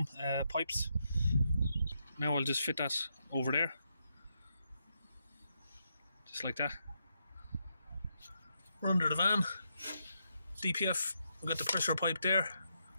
pipes. Now I'll just fit that over there, just like that. We're under the van. DPF, we've got the pressure pipe there.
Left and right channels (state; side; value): inverted; both; correlation -0.81